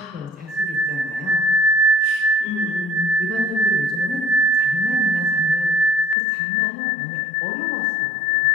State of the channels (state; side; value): drops out; right; at 6.2 s